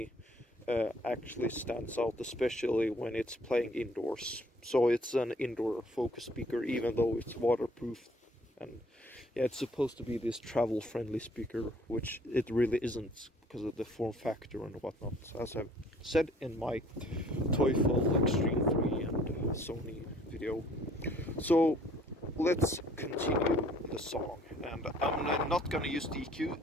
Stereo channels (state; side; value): normal; both; correlation 0.58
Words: actually stands out, especially when it's playing indoors. So it's an indoor focus speaker, even though it's waterproof. And yeah, it's supposed to be this travel-friendly speaker, which it really isn't because of the form factor and whatnot, as I've said in my Teufel Xtreme 3 and Sony video. So let's continue the song, and I'm not gonna use the